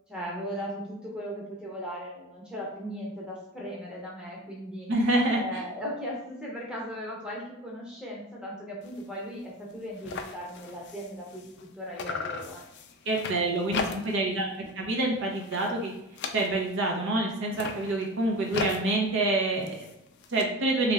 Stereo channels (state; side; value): normal; both; correlation 0.30